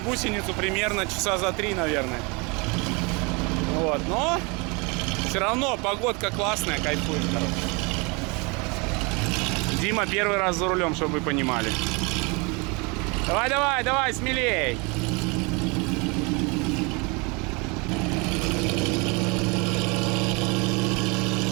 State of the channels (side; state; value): left; quieter; 29.3 dB